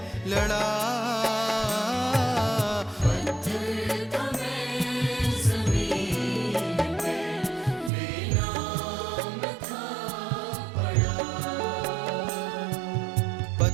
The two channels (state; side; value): drops out; left; at 7.9 s